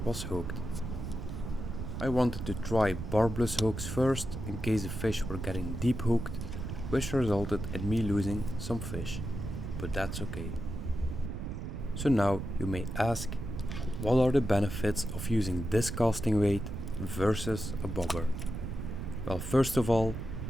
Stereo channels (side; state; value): right; noise; rumble, 6 dB below the sound